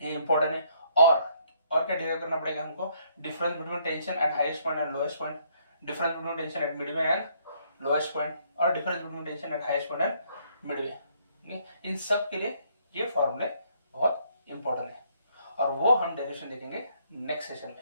ये इंपॉर्टेंट है। और क्या डिराइव करना पड़ेगा हमको, difference between tension at highest point and lowest point, difference between tension at midway and lowest point, और difference between tension at highest point and midway. इन सब के लिए ये फॉर्मूले बहुत इंपॉर्टेंट है और वो हम डेरिवेशन देखेंगे नेक्स्ट सेशन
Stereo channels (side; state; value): both; inverted; correlation -0.69